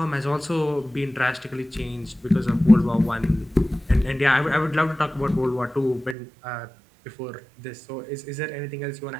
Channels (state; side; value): drops out; left; at 6.2 s